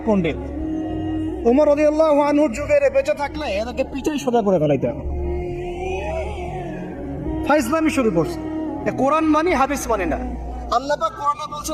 পণ্ডিত। ওমর রাদিয়াল্লাহু আনহুর যুগে বেঁচে থাকলে এনাকে পিছাই সোজা করে ফেলাইতে হবে। ফাইজলামি শুরু করছে, কোরআন মানি হাদিস মানি না। আল্লাহ পাক কোরআনে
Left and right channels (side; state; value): both; identical; correlation 1.00